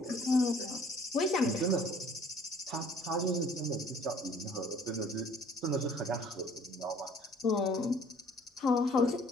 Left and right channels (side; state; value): both; normal; correlation 0.55